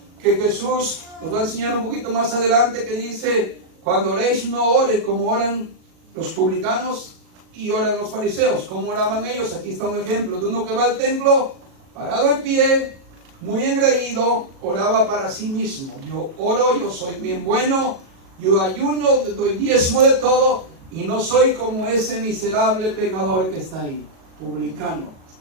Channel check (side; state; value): left; late; 37 ms